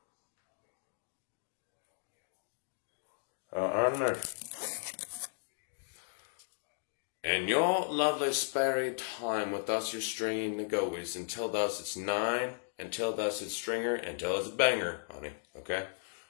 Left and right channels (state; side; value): silent; right; digital silence